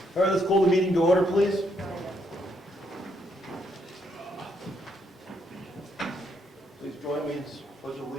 right, let's call the meeting to order, please. Please join me in pledge of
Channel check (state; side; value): normal; both; correlation 0.75